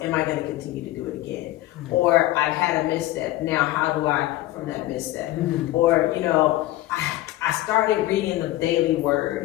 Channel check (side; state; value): right; quieter; 16.2 dB